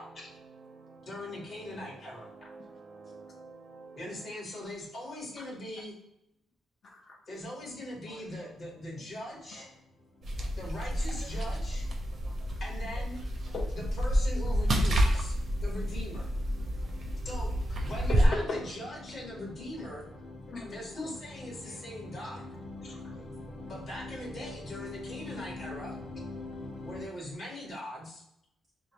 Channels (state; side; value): normal; both; correlation 0.88